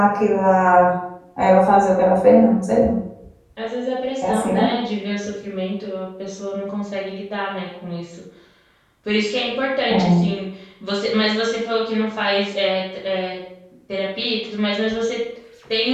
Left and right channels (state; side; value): identical; both; correlation 1.00